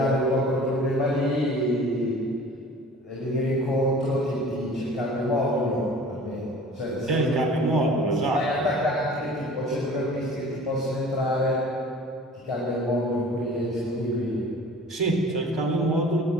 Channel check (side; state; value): both; normal; correlation 0.45